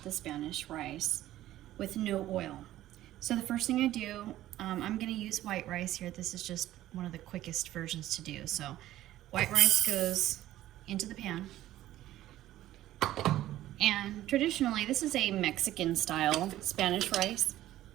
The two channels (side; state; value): left; quieter; 14.2 dB